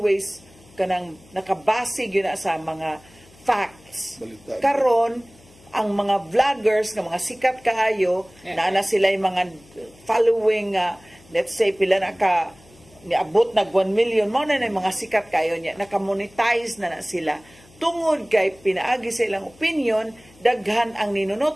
kanang nakabase gyud na sa mga facts. Karon ang mga vloggers nga mga sikat kaayo na sila yung mga following let's say pila na ka niabot nag 1 million mo na yung mga sikat kayo niya naka-monetize na sila tungod kay pinaagi sa ilang opinion daghan ang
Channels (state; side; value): noise; left; hum, 26 dB below the sound